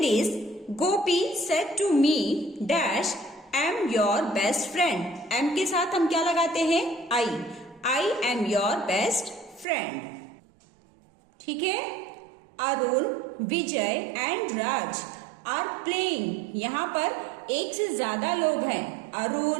is Gopi said to me dash am your best friend. Am के साथ हम क्या लगाते हैं, I am your best friend. ठीक है। Arun, Vijay and Raj are playing. यहाँ पर एक से ज्यादा लोग हैं,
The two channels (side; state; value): left; drops out; at 9.7 s